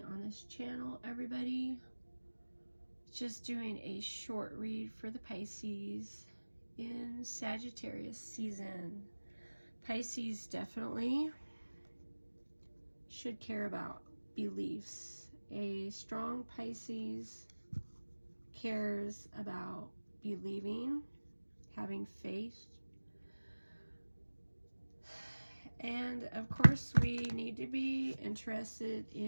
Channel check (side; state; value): both; inverted; correlation -1.00